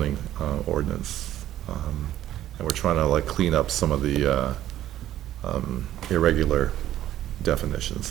ordinance. And we're trying to like clean up some of the irregular definitions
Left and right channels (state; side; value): quieter; left; 12.8 dB